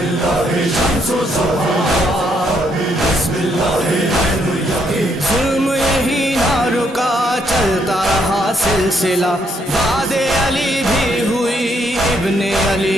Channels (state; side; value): normal; both; correlation 0.73